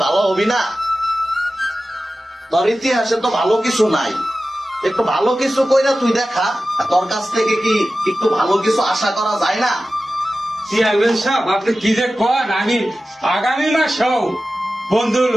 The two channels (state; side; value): normal; both; correlation 0.94